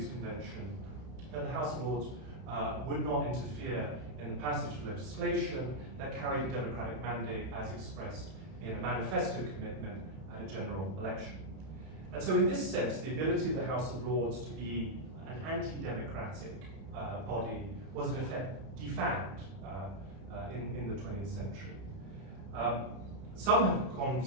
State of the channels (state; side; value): late; left; 31 ms